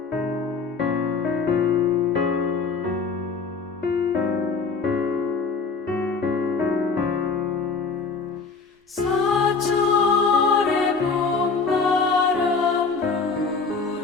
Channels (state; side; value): quieter; right; 4.7 dB